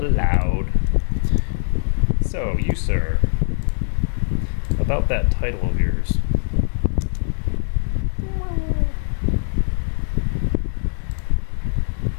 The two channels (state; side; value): silent; right; digital silence